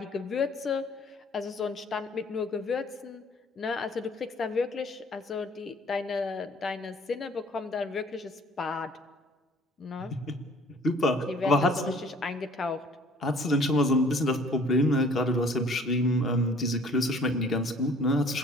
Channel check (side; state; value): both; normal; correlation 0.54